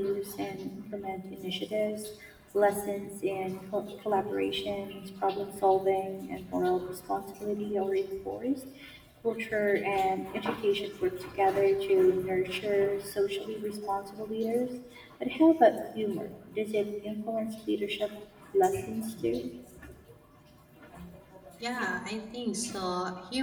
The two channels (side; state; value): both; identical; correlation 1.00